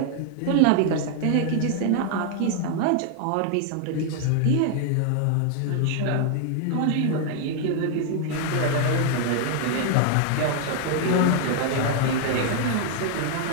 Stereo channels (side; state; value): both; different; correlation 0.00